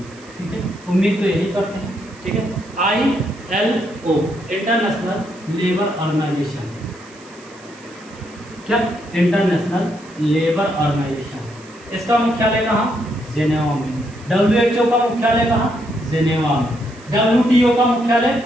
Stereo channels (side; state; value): right; noise; hiss, 25 dB below the sound